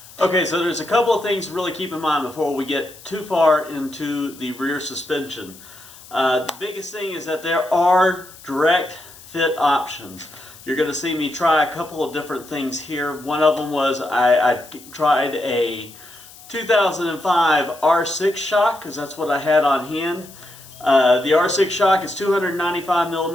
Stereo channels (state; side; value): noise; left; hiss, 20 dB below the sound